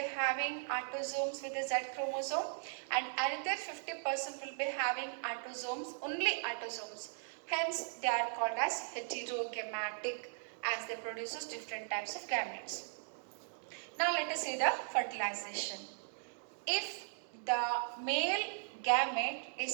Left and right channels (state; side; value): silent; left; digital silence